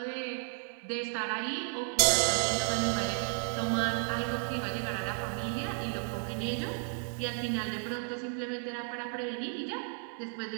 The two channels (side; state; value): left; silent; 56 dB below the other